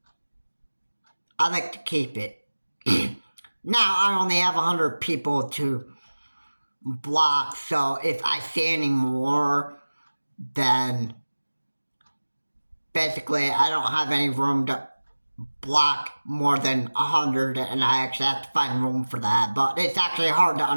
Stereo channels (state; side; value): inverted; both; correlation -1.00